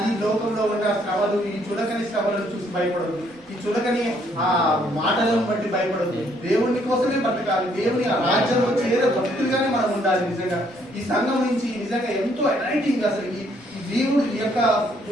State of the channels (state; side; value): noise; right; rumble, 29 dB below the sound